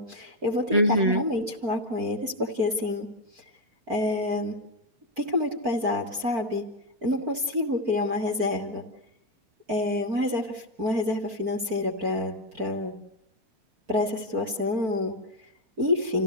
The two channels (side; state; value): left; late; 4.5 ms